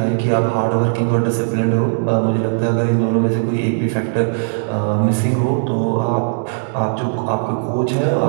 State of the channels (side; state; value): left; silent; digital silence